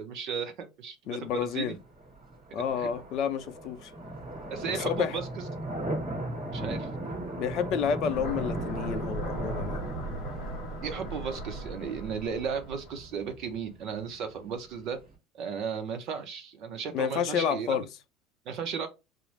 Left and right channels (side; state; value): both; normal; correlation 0.41